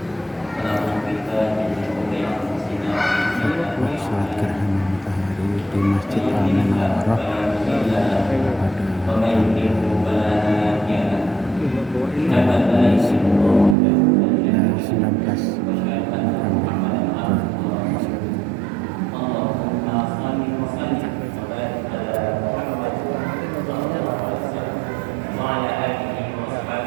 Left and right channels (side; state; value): left; drops out; at 13.8 s